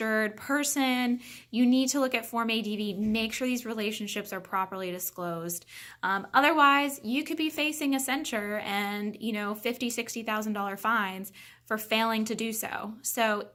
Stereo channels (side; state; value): both; identical; correlation 1.00